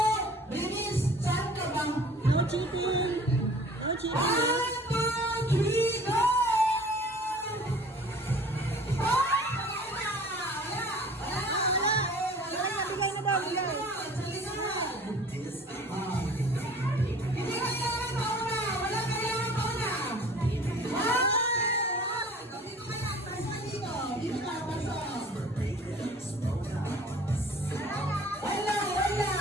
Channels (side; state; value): both; normal; correlation 0.48